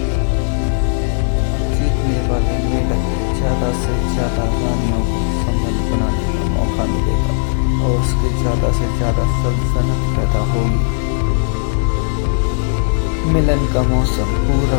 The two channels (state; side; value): silent; right; digital silence